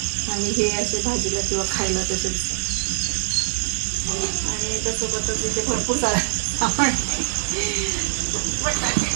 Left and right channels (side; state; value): left; silent; digital silence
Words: आणि हे असे भाजीला किंवा खायला तसेच. आणि त्यासोबतच इथे भरपूर सारा